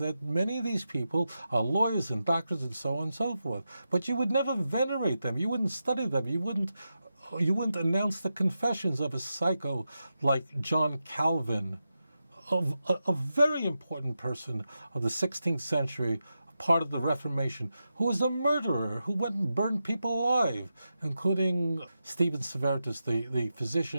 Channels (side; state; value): both; inverted; correlation -0.89